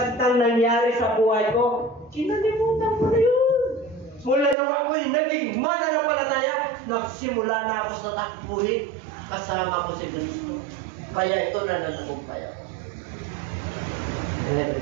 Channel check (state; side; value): drops out; left; at 4.5 s